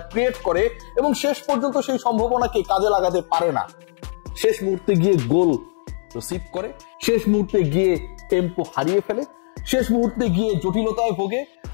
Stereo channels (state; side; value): silent; right; digital silence